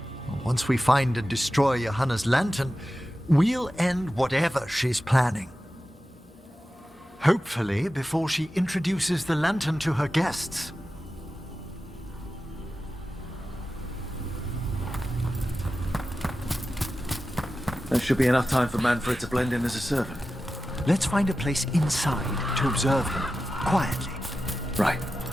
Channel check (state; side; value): normal; both; correlation 0.93